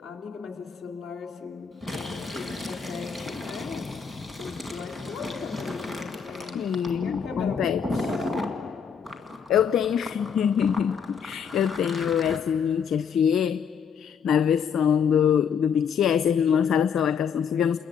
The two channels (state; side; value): quieter; right; 7.2 dB